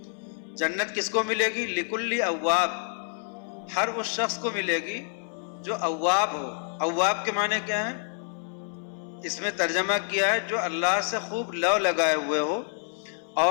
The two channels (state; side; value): silent; right; 60 dB below the other